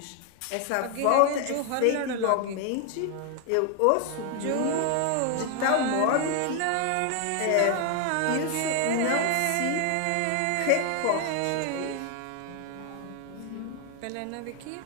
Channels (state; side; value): different; both; correlation 0.00